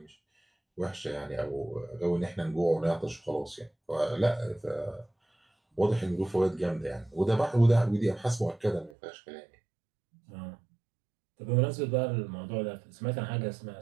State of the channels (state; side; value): drops out; left; at 9.0 s